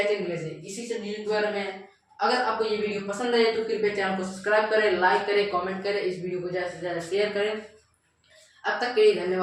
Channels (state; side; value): identical; both; correlation 1.00